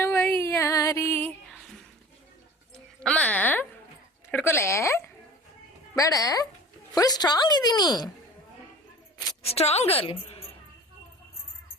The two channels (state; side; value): normal; both; correlation 0.41